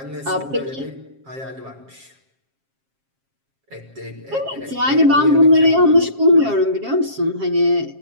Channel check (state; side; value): late; left; 7.4 ms